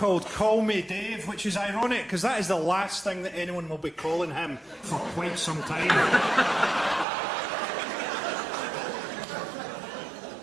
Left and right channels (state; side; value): drops out; left; at 7.1 s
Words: Call Me Dave, which is ironic because that is the last thing that anyone will be calling him for quite some time.